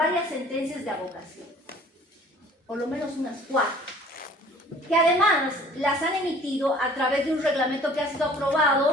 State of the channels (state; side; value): normal; both; correlation 0.51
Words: sentencias de abogación, por lo menos unas 4, que además las han emitido a través de un reglamento que ha sido